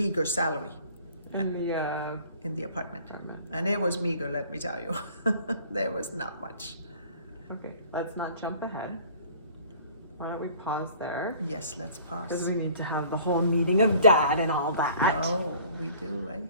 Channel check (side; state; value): both; inverted; correlation -0.51